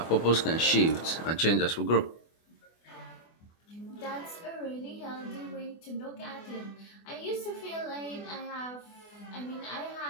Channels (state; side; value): late; right; 24 ms